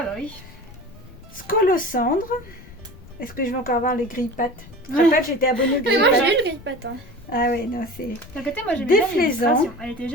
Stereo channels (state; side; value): noise; left; rumble, 20 dB below the sound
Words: bah oui. Scolocendre. Est-ce que je vais encore avoir les grille-pattes? Je te rappelle, j'étais abonnée aux Mais moi grille-pattes. j'ai eu le grille-patte. Hein. Ah ouais, non, c'est... D'un côté, moi j'aimais bien Déflaisant. l'illustration. Elle était